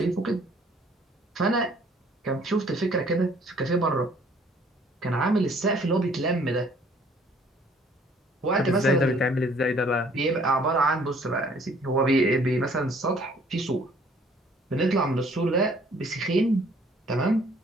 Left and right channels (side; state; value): both; normal; correlation 0.59